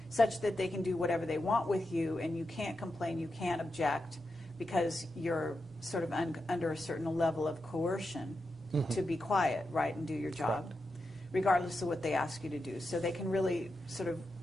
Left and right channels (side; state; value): both; normal; correlation 0.88